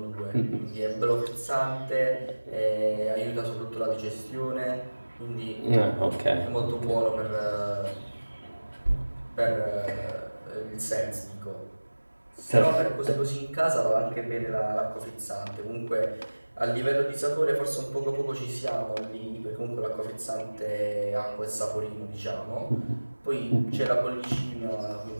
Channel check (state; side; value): inverted; both; correlation -1.00